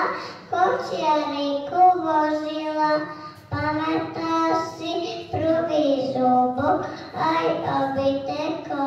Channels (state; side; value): identical; both; correlation 1.00